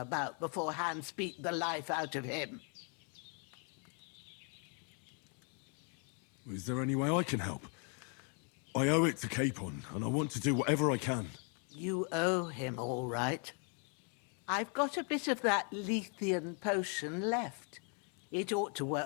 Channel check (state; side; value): quieter; right; 39.1 dB